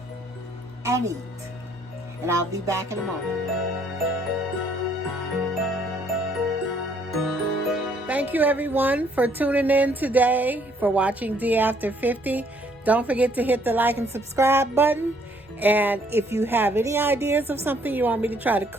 and eat. And I'll be back in a moment. Thank you everyone for tuning in today, for watching D After 50. Don't forget to hit the like and subscribe button. And if you have any ideas of something you want me to try to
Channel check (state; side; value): normal; both; correlation 0.65